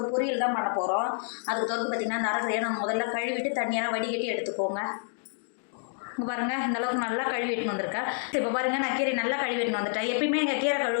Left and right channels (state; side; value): silent; right; 58 dB below the other